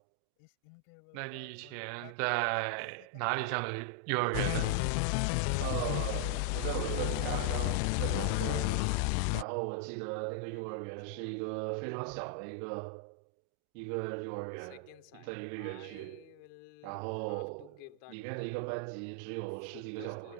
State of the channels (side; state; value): both; different; correlation -0.01